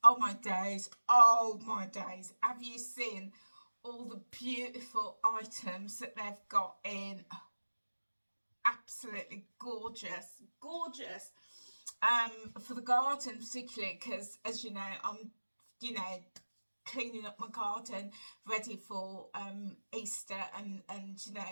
Oh my days, oh my days. Have you seen all the beautiful items that they've got in? Absolutely gorgeous, gorgeous. For the garden particularly, because as you know, I'm, cleaning up my garden ready for Easter and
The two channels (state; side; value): inverted; both; correlation -1.00